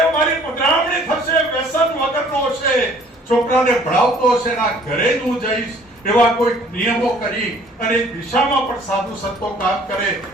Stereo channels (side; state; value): both; normal; correlation 0.56